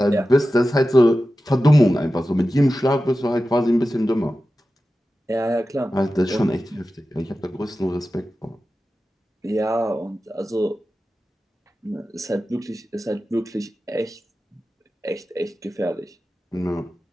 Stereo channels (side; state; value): both; normal; correlation 0.94